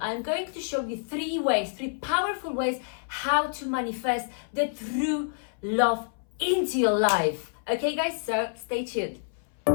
going to show you three powerful ways how to manifest the true love into your life. Okay guys, so stay tuned.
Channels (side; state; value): right; silent; 58 dB below the other